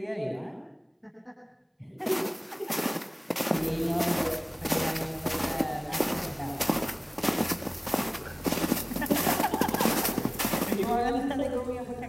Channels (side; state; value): both; identical; correlation 1.00